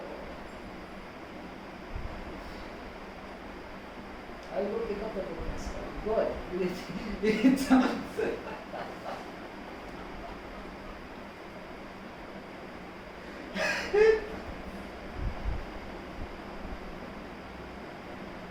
I will pick up the book myself. Go ahead. It sounds.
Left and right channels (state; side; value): identical; both; correlation 1.00